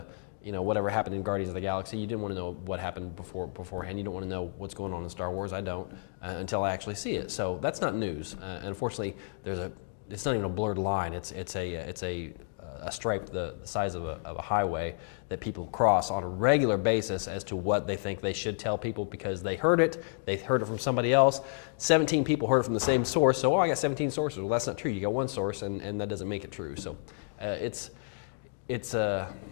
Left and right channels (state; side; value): silent; right; digital silence